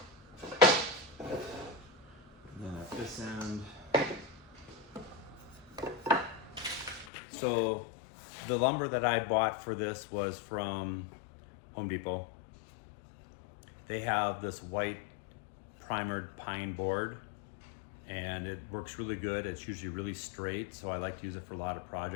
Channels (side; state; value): right; drops out; at 7.1 s